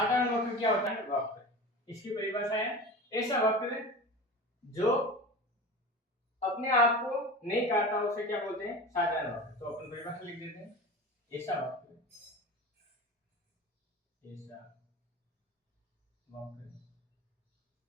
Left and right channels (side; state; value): both; normal; correlation 0.32